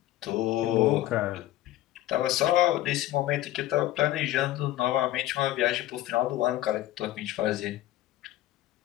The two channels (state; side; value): quieter; right; 14.7 dB